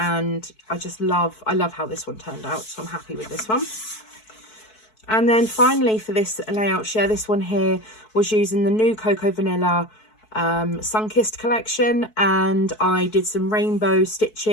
I love how this one turned out, so I'm happy with this one. And then finally for this layout share, this one here was using the new Cocoa Vanilla Sunkissed collection, and I did some rainbow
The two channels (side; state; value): right; late; 4.6 ms